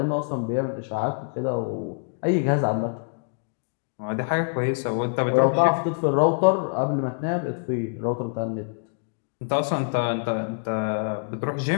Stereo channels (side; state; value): right; silent; digital silence